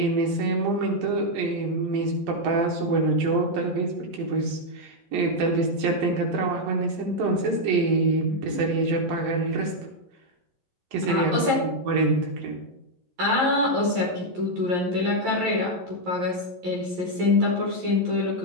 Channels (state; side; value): late; left; 11 ms